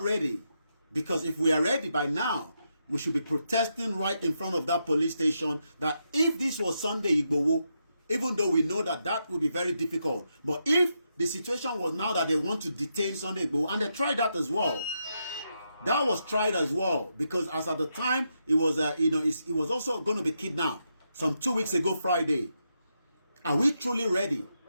Because if we are ready by now, we should be protesting right in front of that police station. That if this was Sunday Igboho, even though we know that that would be very difficult. But if the situation was now that they want to detain Sunday Igboho, and they tried that as well. That was tried as well because as at the time it was it was also going to be kidnapped some 2 weeks ago Friday. Are we truly ready,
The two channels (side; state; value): both; inverted; correlation -0.83